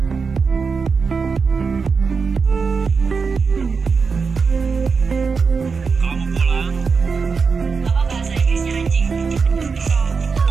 Kalau mau pulang, Apa bahasa Inggrisnya anjing? So,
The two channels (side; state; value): left; quieter; 5.1 dB